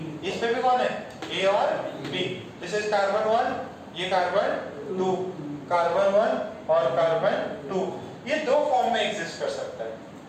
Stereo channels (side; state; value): both; identical; correlation 1.00